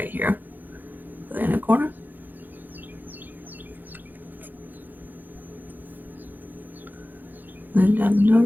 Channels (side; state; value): left; late; 0.087 ms